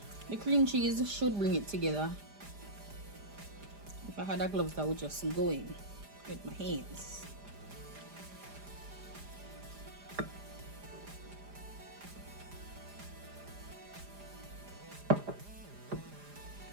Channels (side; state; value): left; late; 4.9 ms